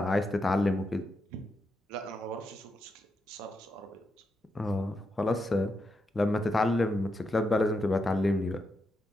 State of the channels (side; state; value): both; normal; correlation 0.84